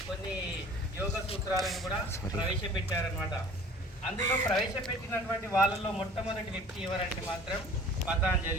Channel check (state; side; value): normal; both; correlation 0.48